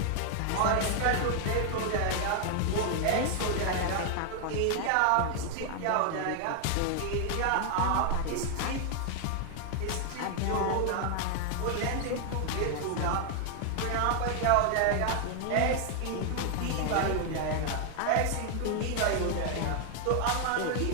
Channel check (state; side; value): different; both; correlation 0.00